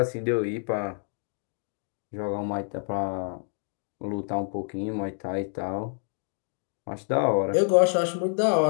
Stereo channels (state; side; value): silent; right; 59 dB below the other